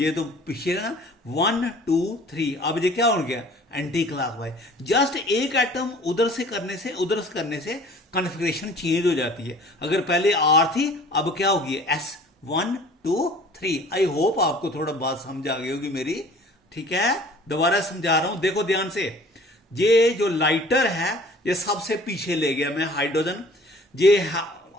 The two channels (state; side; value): normal; both; correlation 0.49